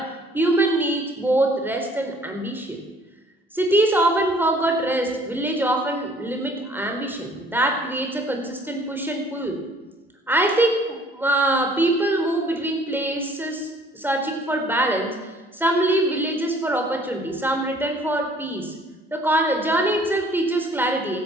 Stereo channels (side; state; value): both; normal; correlation 0.57